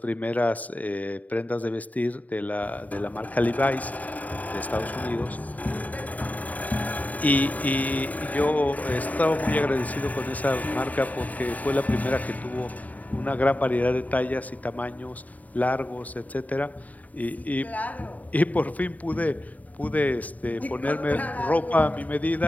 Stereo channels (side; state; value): right; late; 0.073 ms